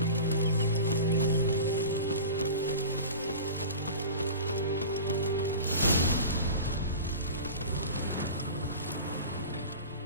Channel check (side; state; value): both; inverted; correlation -0.35